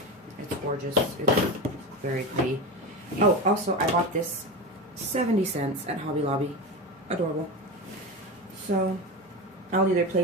it's gorgeous. It's very pretty. Oh, also, I bought this 70 cents at Hobby Lobby. Adorable. So, I'll either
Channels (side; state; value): both; normal; correlation 0.22